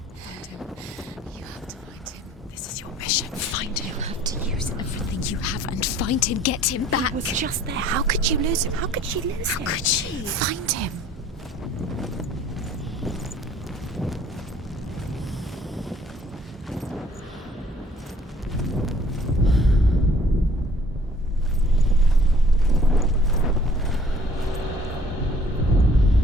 him. You have to find him. This is your mission. Find him. You have to use everything you have and find him. Get him back. He was just there. How could you lose him? How could she lose him? How could she? Find him.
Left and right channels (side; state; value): both; normal; correlation 0.55